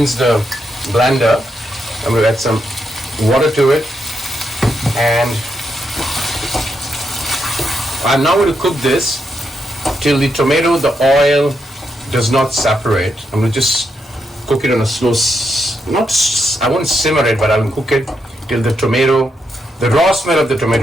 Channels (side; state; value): both; normal; correlation 0.81